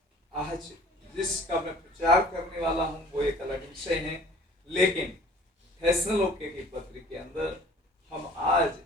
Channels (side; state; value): both; normal; correlation 0.50